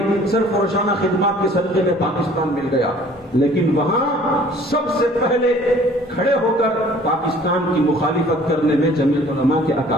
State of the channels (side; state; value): both; normal; correlation 0.53